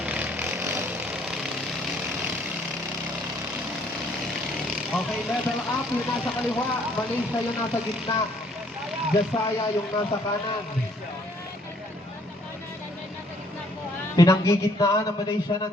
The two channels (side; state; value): both; normal; correlation 0.63